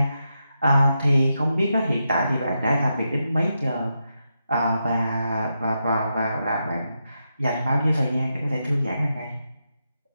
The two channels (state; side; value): inverted; both; correlation -0.85